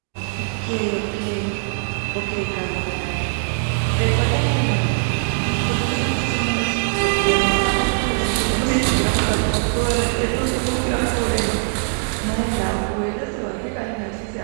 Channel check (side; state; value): left; silent; 64 dB below the other